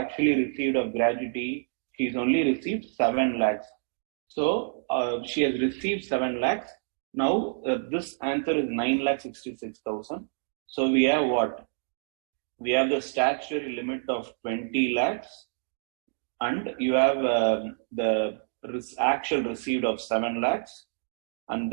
received of gratuity? She has only received 7 lakhs. So she has received 7 lakhs. Now this answer is 9,66,000. So we have what? We have the statutory limit of 20 lakhs, and you have the actual received of 7 lakhs, and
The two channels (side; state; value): left; silent; digital silence